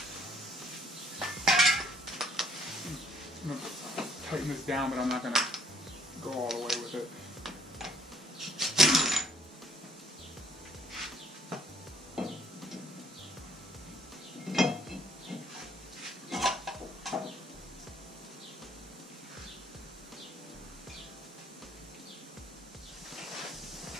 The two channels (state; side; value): normal; both; correlation 0.62